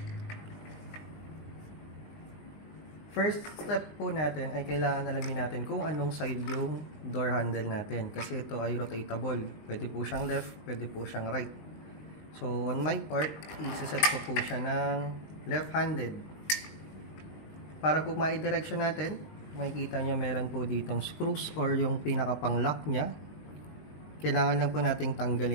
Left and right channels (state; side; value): late; right; 19 ms